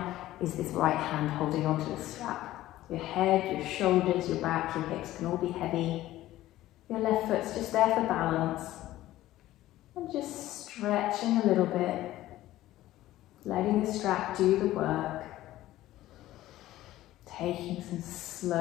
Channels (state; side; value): quieter; right; 15.2 dB